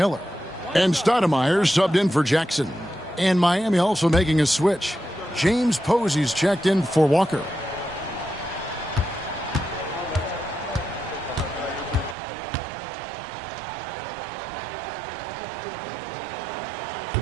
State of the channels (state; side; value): drops out; left; at 12.2 s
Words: And Stoudemire subbed in for Jackson. And Miami also making a switch. James Posey's checked in for Walker.